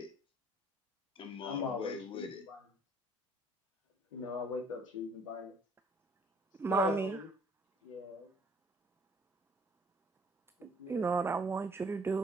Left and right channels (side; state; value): both; normal; correlation 0.59